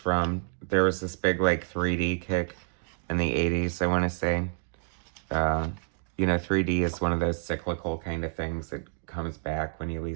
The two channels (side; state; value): left; silent; digital silence